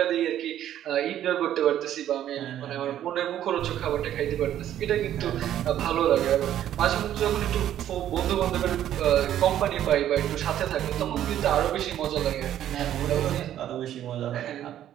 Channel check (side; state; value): left; quieter; 11.4 dB